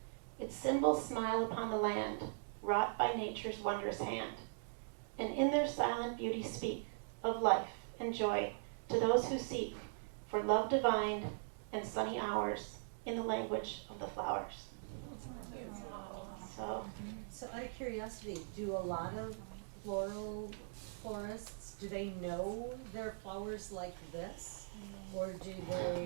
Its symbols smile upon the land, wrought by nature's wondrous hand, and in their silent beauty speak of life and joy to those who seek for love divine and sunny hours in the language of the flowers. So out of curiosity, do a lot of florists, do they know their flowers like this? Or do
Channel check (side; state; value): left; silent; digital silence